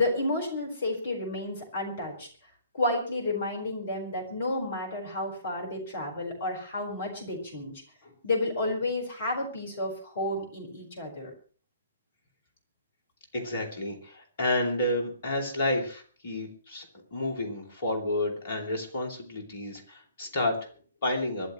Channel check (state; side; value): inverted; both; correlation -0.58